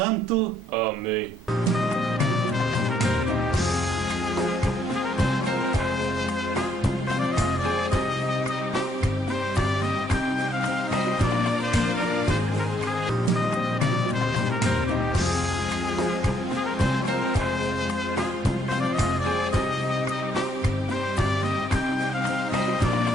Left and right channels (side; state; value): both; normal; correlation 0.71